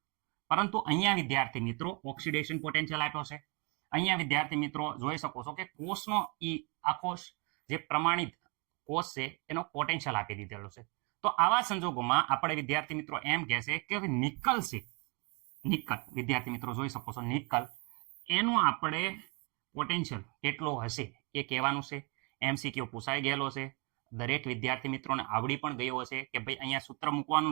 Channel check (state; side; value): quieter; left; 31.7 dB